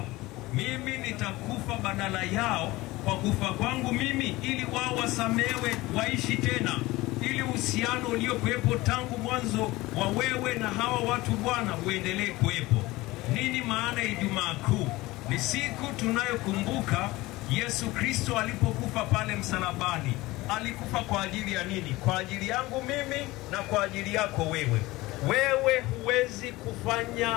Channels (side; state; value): right; quieter; 19.8 dB